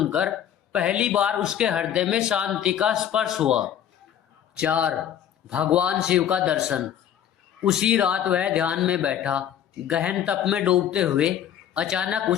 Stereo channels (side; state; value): right; quieter; 10.0 dB